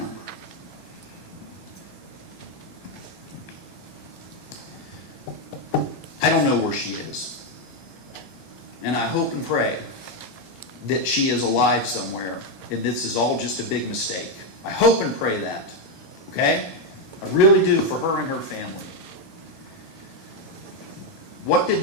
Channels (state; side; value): late; right; 10 ms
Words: I don't know where she is. And I hope and pray that she is alive somewhere and this is all just a big mistake. I hope and pray that. Okay? I really do, for her and her family. What did